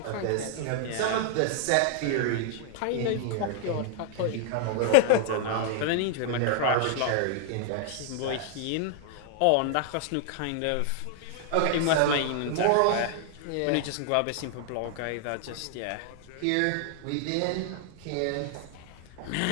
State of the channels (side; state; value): both; different; correlation 0.00